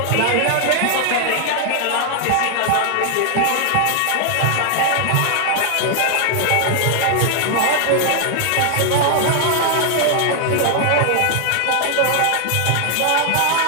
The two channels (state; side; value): different; both; correlation 0.00